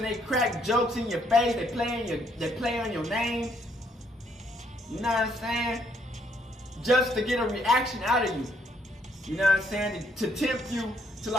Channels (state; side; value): normal; both; correlation 0.70